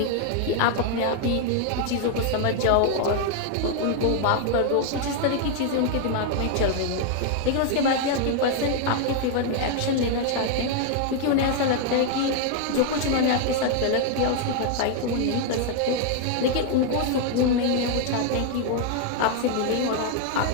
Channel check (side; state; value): both; different; correlation 0.00